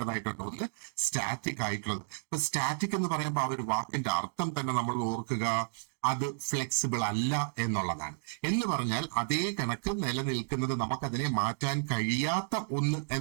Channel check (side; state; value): left; silent; digital silence